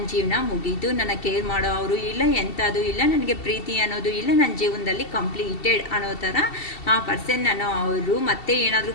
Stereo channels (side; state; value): right; late; 2.7 ms